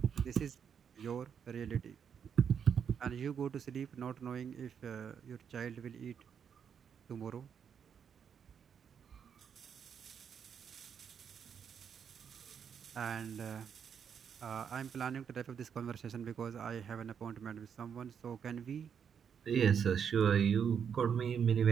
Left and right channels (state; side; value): quieter; left; 7.5 dB